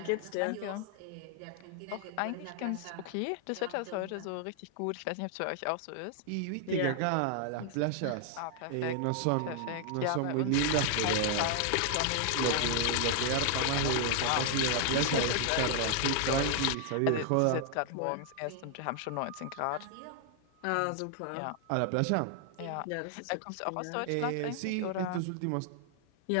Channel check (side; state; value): both; different; correlation 0.00